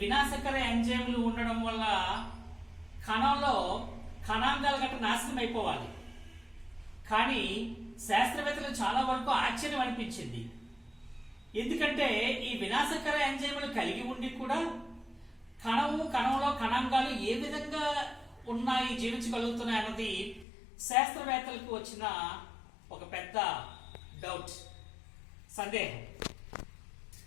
వినాశకర ఎంజైమ్లు ఉండడం వల్ల కణంలో కణాంగాలు గట్రా నాశనం అయిపోవాలి. కానీ శాస్త్రవేత్తలు చాలా వరకు ఆశ్చర్యం అనిపించింది. ఎందుకంటే ఈ వినాశకర ఎంజైమ్లు కలిగి ఉండి కూడా కణంలో కణాంగాలు ఏ విధంగా ఉన్నాయి, జీవించగలుగుతున్నాయి అన్నది శాస్త్రవేత్తలకు వచ్చిన ఒక పెద్ద డౌట్, సందేహం.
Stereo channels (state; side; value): drops out; right; at 20.5 s